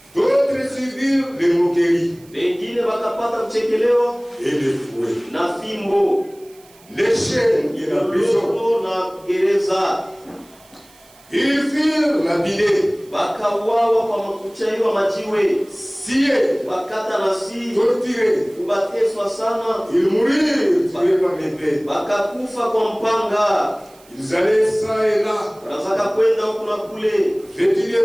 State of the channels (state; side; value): noise; right; hiss, 27 dB below the sound